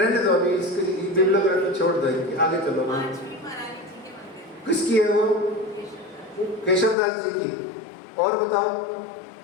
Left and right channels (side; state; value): right; drops out; at 7.0 s